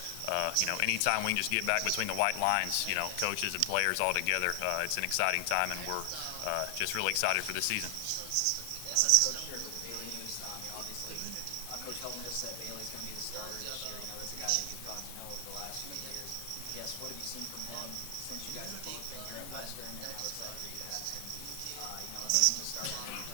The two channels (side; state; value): both; different; correlation 0.00